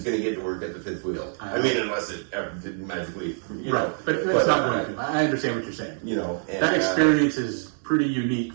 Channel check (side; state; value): left; silent; digital silence